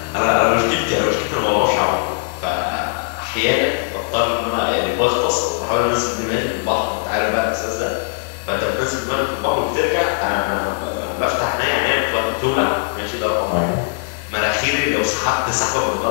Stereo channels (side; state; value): right; silent; digital silence